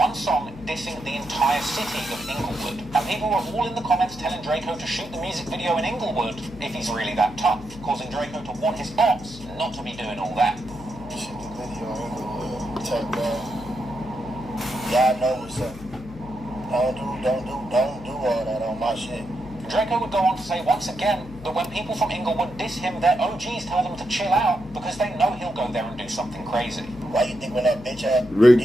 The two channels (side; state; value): left; noise; hum, 17 dB below the sound